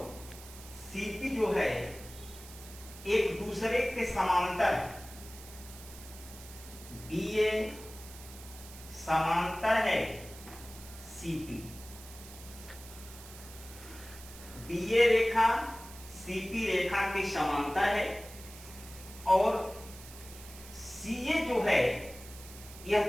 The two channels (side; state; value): right; noise; hiss, 16 dB below the sound